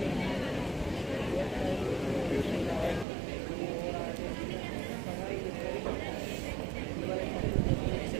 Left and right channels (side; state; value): left; drops out; at 3.1 s